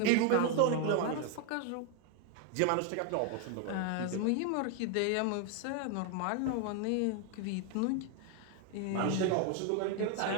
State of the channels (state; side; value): different; both; correlation 0.00